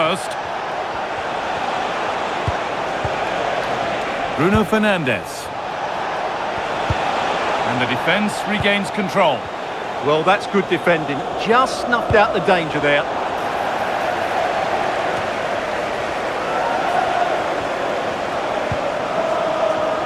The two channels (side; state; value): both; identical; correlation 1.00